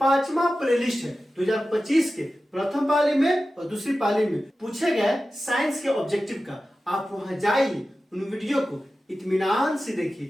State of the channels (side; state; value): both; normal; correlation 0.94